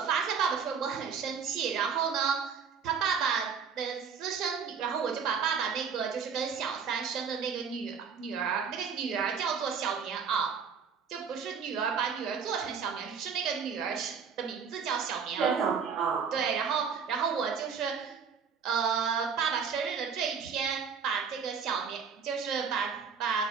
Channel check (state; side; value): quieter; left; 6.3 dB